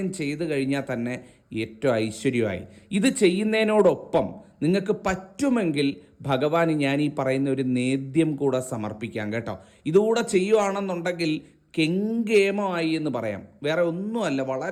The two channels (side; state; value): both; identical; correlation 1.00